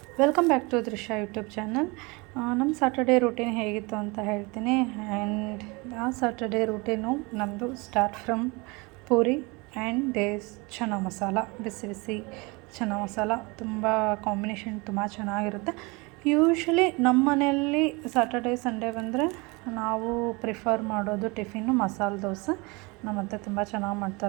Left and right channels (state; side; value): quieter; left; 26.8 dB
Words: welcome back to Drishya YouTube channel. ನಮ್ಮ Saturday routine ಹೇಗಿತ್ತು ಅಂತ ಹೇಳ್ತೀನಿ. ಆ್ಯಂಡ್ ಆ ಸ್ಯಾಟರ್ಡೇ ರೂಟೀನು ನಮ್ಮದು start from puri and these chana masala. ಬಿಸಿ ಬಿಸಿ ಚನ್ನ ಮಸಾಲ ತುಂಬ ಕಾಂಬಿನೇಷನ್ ತುಂಬ ಚೆನ್ನಾಗಿರುತ್ತೆ. ಯೂಶ್ವಲಿ ನಮ್ಮ ಮನೆಯಲ್ಲಿ ಸ್ಯಾಟರ್ಡೇ ಸಂಡೇ ಬಂದರೆ ನಾವು ಪ್ರಿಫರ್ ಮಾಡೋದು ಟಿಫಿನ್ನು ಮಸಾಲೆ ದೋಸೆ. ನಮ್ಮ ಅತ್ತೆ ತುಂಬ ಚೆನ್ನಾಗಿ